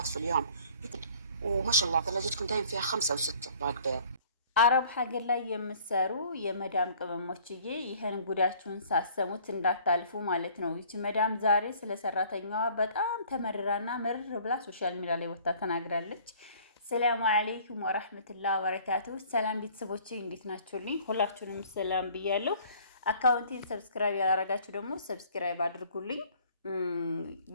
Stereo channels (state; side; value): inverted; both; correlation -0.54